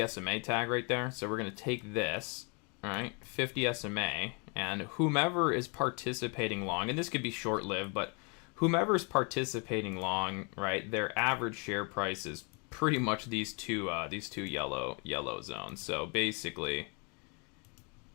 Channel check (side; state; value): right; quieter; 33.9 dB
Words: SMA tag right there. So we're going to take this, right, 50 SMA, and whomever is participating long, and this could be short-lived, but whomever is participating long, right, their average share price is pretty much these two yellow zones. So basically,